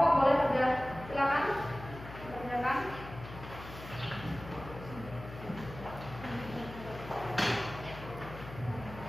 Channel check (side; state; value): left; noise; hum, 13 dB below the sound